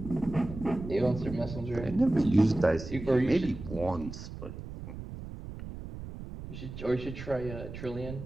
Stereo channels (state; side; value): noise; right; rumble, 11 dB below the sound